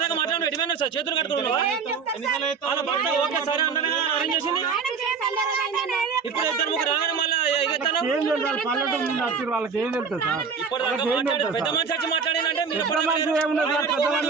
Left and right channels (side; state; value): left; quieter; 5.6 dB